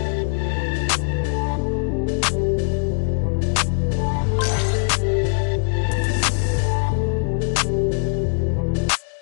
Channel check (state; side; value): silent; right; 56 dB below the other